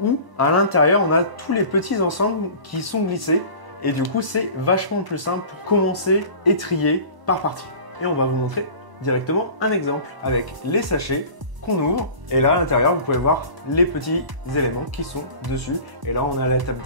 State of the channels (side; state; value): left; late; 1.0 ms